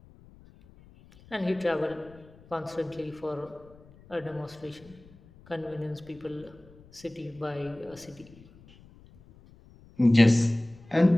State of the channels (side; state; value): left; noise; rumble, 24 dB below the sound